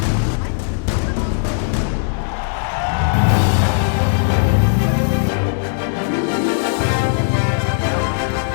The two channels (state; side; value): silent; right; 64 dB below the other